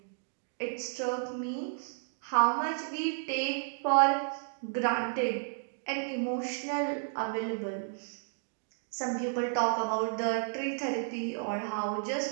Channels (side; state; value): left; silent; digital silence